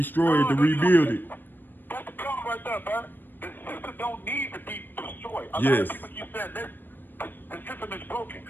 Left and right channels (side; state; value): right; late; 0.093 ms